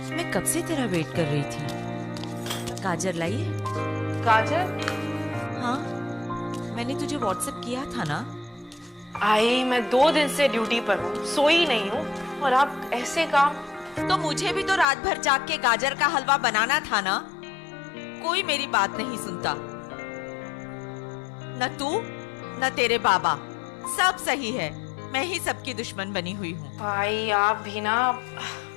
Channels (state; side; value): drops out; right; at 14.9 s